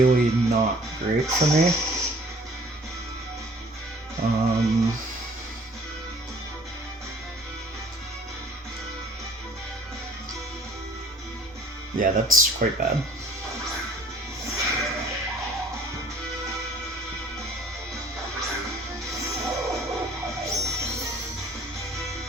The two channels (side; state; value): both; normal; correlation 0.54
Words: not great for me. Yeah, that's quite bad.